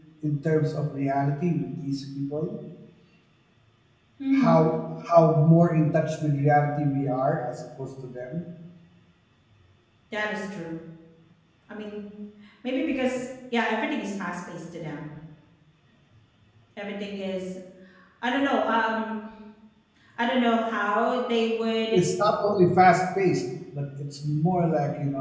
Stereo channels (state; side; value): identical; both; correlation 1.00